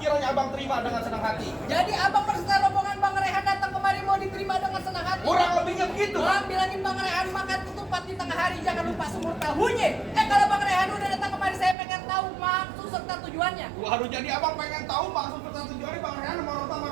abang terima dengan senang hati. Jadi abang berserta rombongan Bang Rehan datang kemari mau diterima dengan senang hati. Kurang lebihnya begitu. Bang bilangin Bang Rehan makan ketupat di tengah hari jangan lupa sumur tahunya. Kalau Bang Rehan udah datang kemari saya pengen tahu maksud serta tujuannya. Waduh, jadi abang pengen tahu maksud serta tujuannya Bang Rehan sama orang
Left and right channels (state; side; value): drops out; left; at 11.8 s